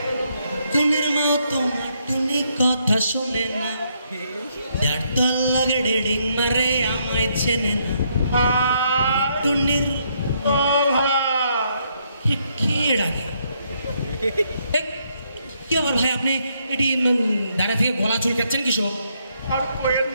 টুনির মা তোমার টুনি কথা শোনে না যার তোর লাগে ডেডিং মারে আমায় চেনে না টুনির কে ডাকে কি আবার ভাই আপনি এটি দাঁড়া থেকে গলা চুলকাচ্ছেন কিসব আর কোয়েন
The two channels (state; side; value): inverted; both; correlation -0.74